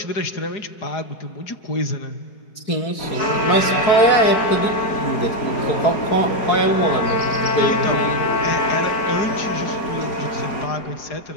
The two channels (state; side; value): late; right; 4.6 ms